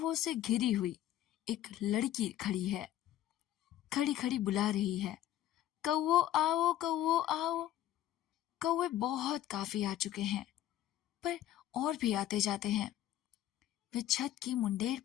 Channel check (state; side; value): quieter; right; 12.7 dB